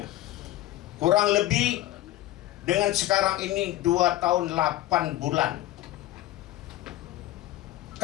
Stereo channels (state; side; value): quieter; right; 15.3 dB